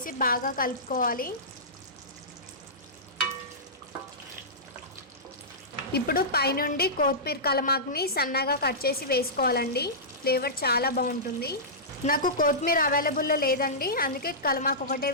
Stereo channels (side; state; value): both; normal; correlation -0.16